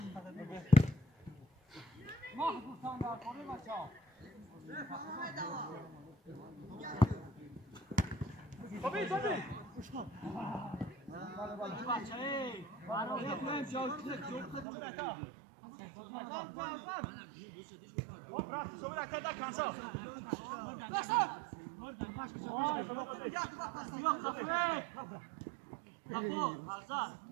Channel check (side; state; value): left; drops out; at 14.7 s